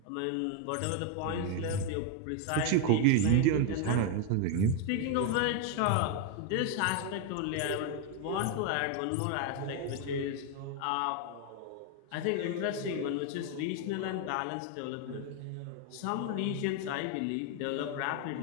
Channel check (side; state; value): both; different; correlation 0.01